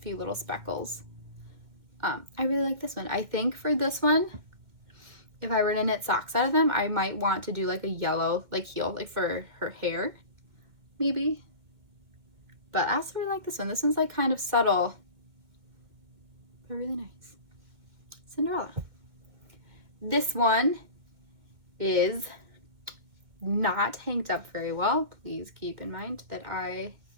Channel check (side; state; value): left; late; 2.1 ms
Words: little speckles. I really like this one. I think for this one, if I were to knit socks out of them, I might want to do like a yellow like heel, like for her hair, maybe. But I also really like this one. This one's like kind of subtle, but really nice. Cinderella. This one is not hanked up very well. Please keep in mind that I